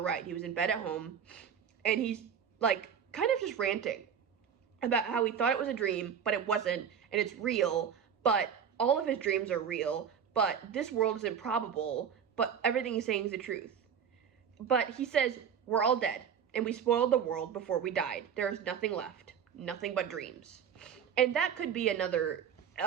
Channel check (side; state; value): left; quieter; 7.8 dB